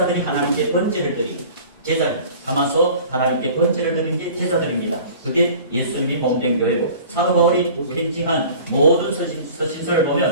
하나님께 번제를 드리고 제자를 담아서 하나님께 번제를 드리는 게 제자들입니다. 그게 예수님이 몸된 교회고, 사도 바울이 편지한 모든 서신서를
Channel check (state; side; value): inverted; both; correlation -0.44